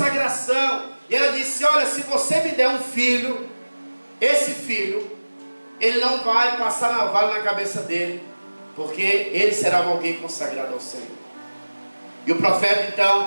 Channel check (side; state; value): both; inverted; correlation -1.00